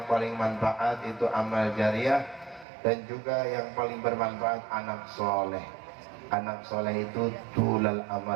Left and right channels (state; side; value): drops out; left; at 2.7 s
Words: paling manfaat itu amal jariah, dan juga yang paling bermanfaat anak soleh. Anak soleh itu tulal